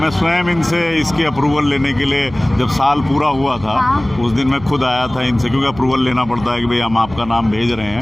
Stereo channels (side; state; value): right; noise; hum, 17 dB below the sound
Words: स्वयं इनसे इसकी अप्रूवल लेने के लिए, जब साल पूरा हुआ था उस दिन मैं खुद आया था इनसे, क्योंकि अप्रूवल लेना पड़ता है कि भाई हम आपका नाम भेज रहे